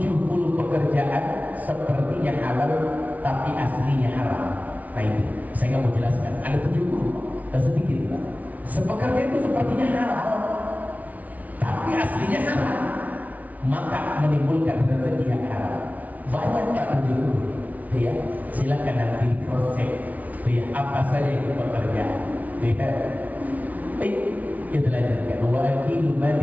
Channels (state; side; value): late; left; 0.072 ms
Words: pekerjaan sepertinya halal tapi aslinya haram. Nah itu saya nggak mau jelaskan. Ada 70, sedikit lah. Sepekerjaan itu sepertinya halal tapi aslinya haram, maka menimbulkan rezeki yang haram. Banyak Pak 70. Ya, silakan nanti cross check. Ya, apa saja itu pekerjaan. Ya. Kita lanjutkan. Wa akilu mali